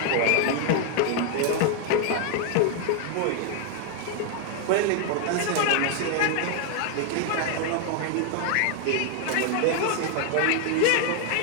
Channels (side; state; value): both; different; correlation 0.00